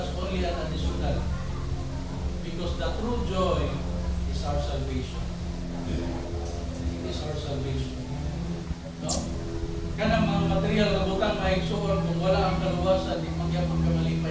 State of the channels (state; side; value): identical; both; correlation 1.00